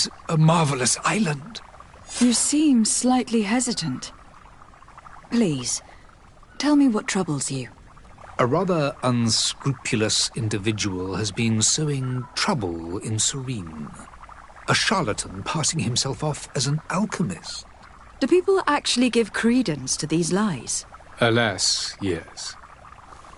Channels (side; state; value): both; identical; correlation 1.00